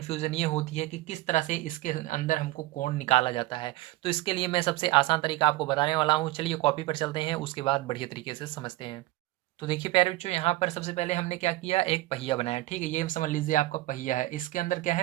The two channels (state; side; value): quieter; left; 17.9 dB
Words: ये होती है कि किस तरह से इसके अंदर हमको कोण निकाला जाता है। तो इसके लिए मैं सबसे आसान तरीका आपको बताने वाला हूँ। चलिए कॉपी पर चलते हैं, उसके बाद बढ़िया तरीके से समझते हैं। तो देखिए प्यारे बच्चों, यहाँ पर सबसे पहले हमने क्या किया, एक पहिया बनाया। ठीक है, ये समझ लीजिए आपका पहिया है। इसके अंदर क्या